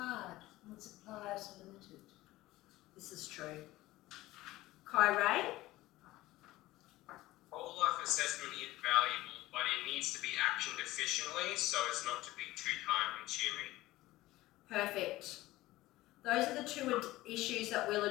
when suppliers are limited. This is true. Kyrie? Whole life assessment is valuable, but it needs to be actioned efficiently so as not to be too time consuming. Perfect. Those are the 2 issues that we'll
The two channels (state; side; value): quieter; right; 17.6 dB